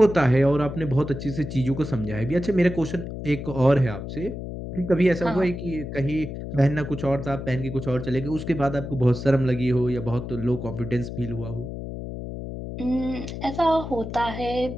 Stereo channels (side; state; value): left; noise; hum, 8 dB below the sound